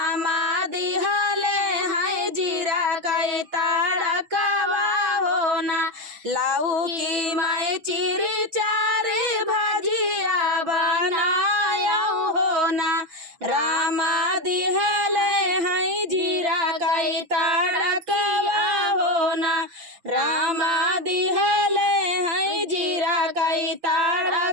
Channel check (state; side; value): late; left; 6.2 ms